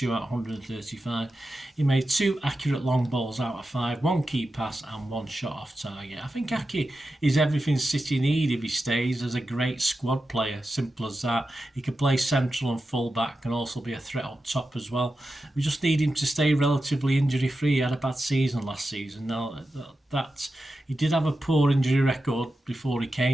out of 135. He made 2 accurate long balls out of 5, 1 key pass and 1 shot off target. I think Aki is everything City need if he stays as a great squad player. Simple as that. He can play central and full back, and also be a threat up top as well. We just need him to stay relatively injury free. He had a bad season last season. Now that he did have a poor injury record before he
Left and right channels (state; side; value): normal; both; correlation 0.91